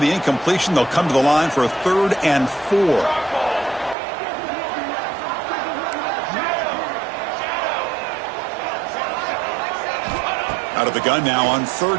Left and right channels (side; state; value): left; drops out; at 4.0 s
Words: incompletion, they'll come to the line for a 3rd and 4. Out of the gun now on